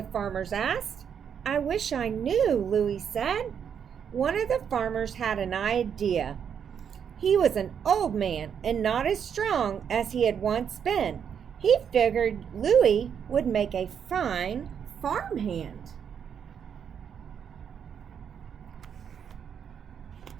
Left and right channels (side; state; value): left; quieter; 7.8 dB